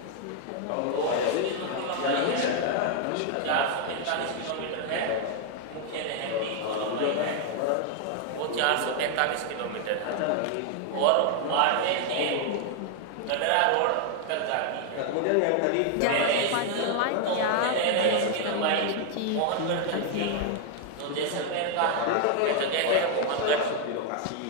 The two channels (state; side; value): different; both; correlation 0.00